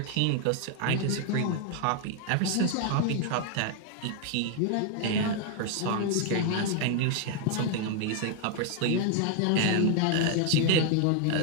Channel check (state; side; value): different; both; correlation 0.00